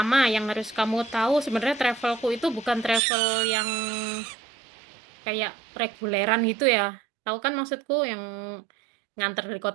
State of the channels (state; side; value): drops out; left; at 3.0 s